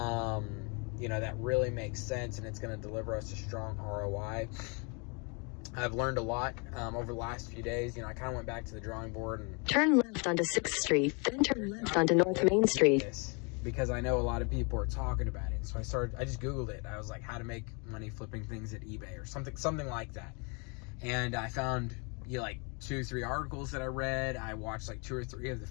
really makes sense and it's going to deliver us a strong ROI. I've learned a lot over the last few days. I kind of went back to the drawing board and turn left onto 6th Street, then turn left onto North Main Street. Because I know a lot of people are talking about it. So I just Googled it. I was like, how to make money flipping things at eBay or something like that. And I found, like 2-3 articles that I read. I watched like 2 or 3 of the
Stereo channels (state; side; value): quieter; right; 33.5 dB